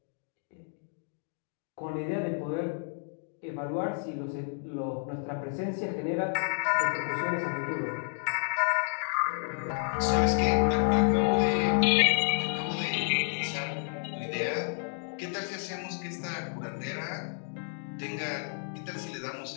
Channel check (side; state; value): right; silent; 57 dB below the other